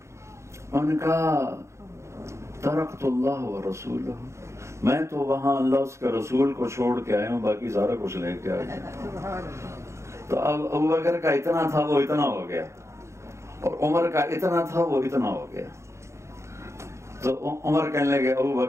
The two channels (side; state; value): left; late; 0.14 ms